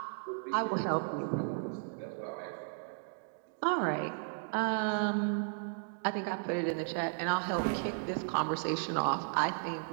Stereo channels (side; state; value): left; silent; digital silence